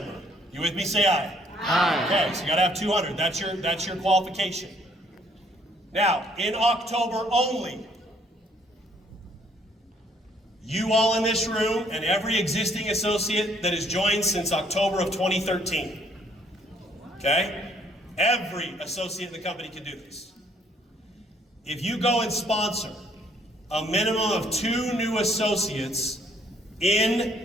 You with me? Say aye. Aye. Okay, so you gotta have 200. That's your qualification. Now, in October only, you all in this room and every existing associate that has joined since October of 2013. Okay? Every associate in the company can do this. If you go and sponsor a minimum of 2 new associates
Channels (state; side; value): normal; both; correlation 0.65